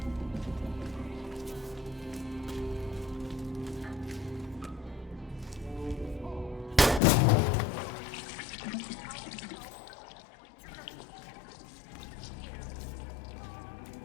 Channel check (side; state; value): right; drops out; at 7.0 s